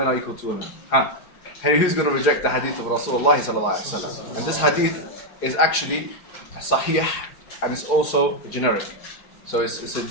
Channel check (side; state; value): right; late; 4.8 ms